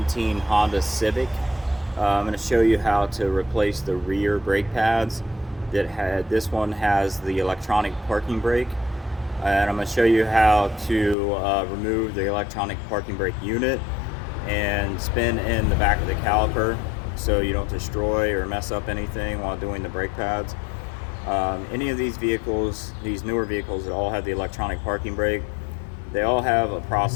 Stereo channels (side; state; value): right; drops out; at 11.2 s